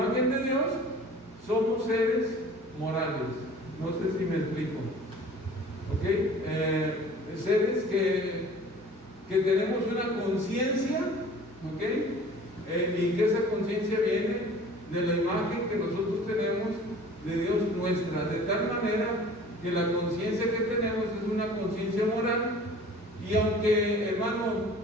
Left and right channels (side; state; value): both; normal; correlation 0.46